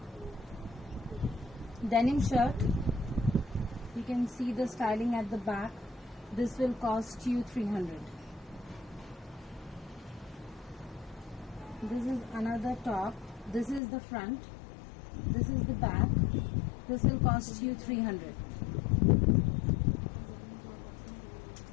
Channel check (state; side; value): drops out; right; at 13.8 s